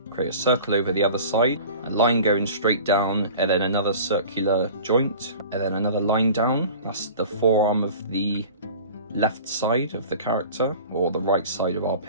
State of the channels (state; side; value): inverted; both; correlation -0.41